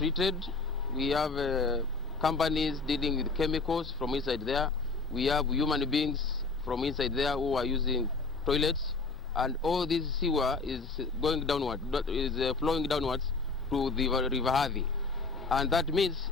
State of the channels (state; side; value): quieter; right; 4.0 dB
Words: We have companies dealing with chemicals from inside there. We have human beings from inside there who are using toilets. And all this sewer is going downward, is flowing downwards to the River Athi. And that means